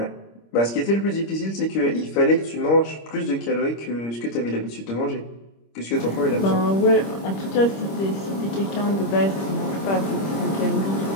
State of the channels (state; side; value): late; right; 26 ms